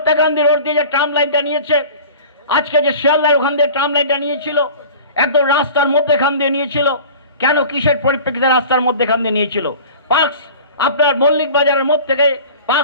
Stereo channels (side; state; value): both; inverted; correlation -0.40